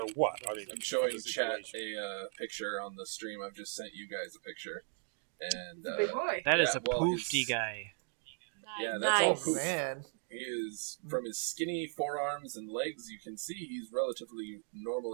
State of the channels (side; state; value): left; silent; 53 dB below the other